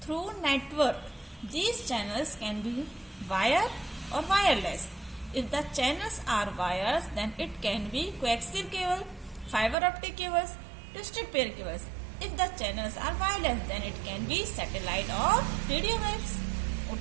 through network. These channels can be wire or wireless. If the channels are wires, then it can be coaxial cable, fiber optic cables, twisted pair cables. If the channels are wireless, then it can be satellite or radio waves.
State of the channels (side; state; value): left; drops out; at 9.8 s